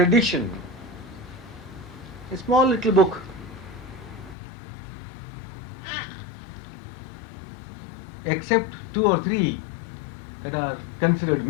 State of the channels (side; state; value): right; drops out; at 4.4 s